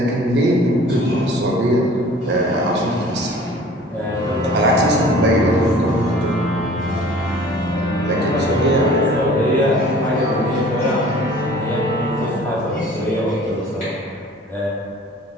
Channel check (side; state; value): both; normal; correlation 0.48